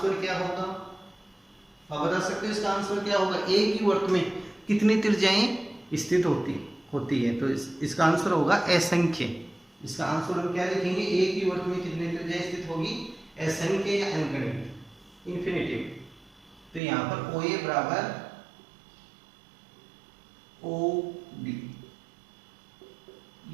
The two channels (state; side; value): drops out; left; at 16.8 s